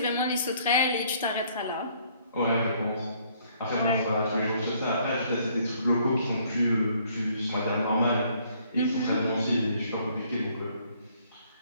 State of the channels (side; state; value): both; inverted; correlation -0.64